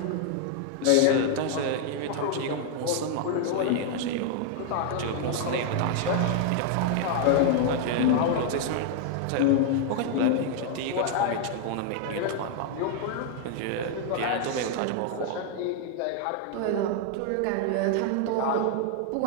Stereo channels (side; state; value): both; different; correlation 0.00